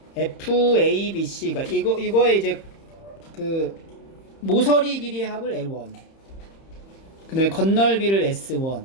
FABC가 이거에 이제 그 모서리 길이의 합을 L1, 그 다음에 겉넓이를 S1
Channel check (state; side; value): late; right; 30 ms